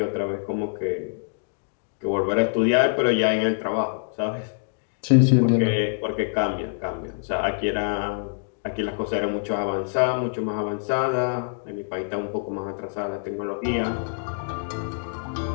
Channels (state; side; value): silent; right; digital silence